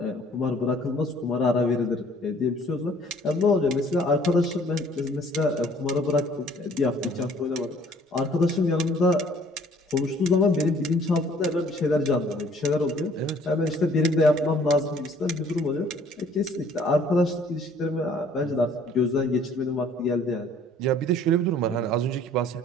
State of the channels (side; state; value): both; normal; correlation 0.57